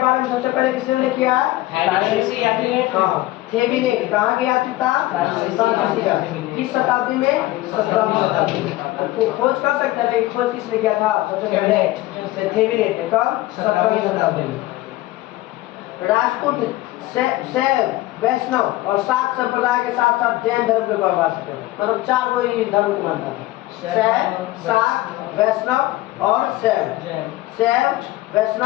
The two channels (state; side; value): quieter; right; 17.4 dB